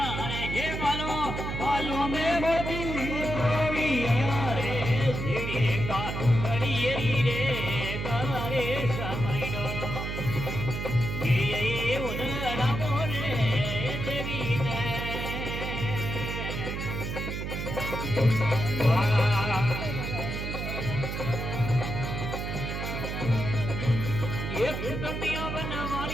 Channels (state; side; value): noise; right; hum, 4 dB below the sound